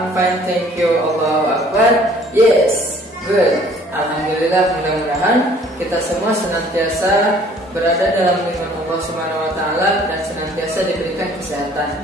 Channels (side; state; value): both; normal; correlation 0.55